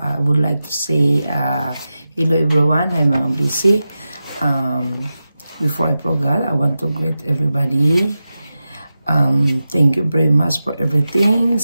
would like to say hello everyone. Hi mga Blissy. Before I forget, I want to greet everybody. Thank you very much for everything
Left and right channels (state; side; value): inverted; both; correlation -0.93